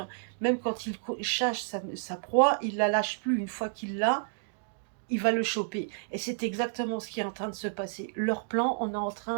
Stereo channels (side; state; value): left; silent; digital silence